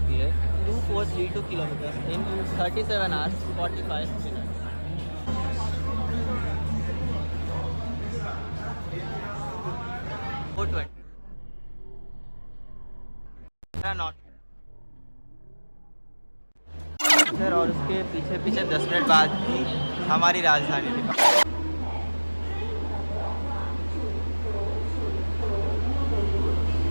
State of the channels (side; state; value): both; inverted; correlation -1.00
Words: है 2432 kilometre in 37 hours 45 minute. Not sir, और उसके पीछे पीछे 10 मिनट बाद ही हमारी राजधानी थी।